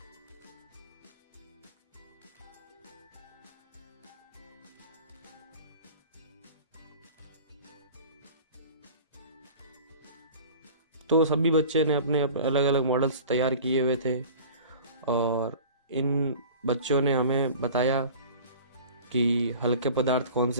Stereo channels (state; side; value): inverted; both; correlation -0.41